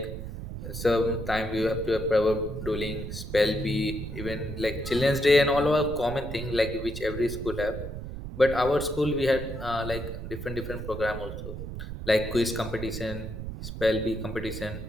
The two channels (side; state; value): right; noise; rumble, 8 dB below the sound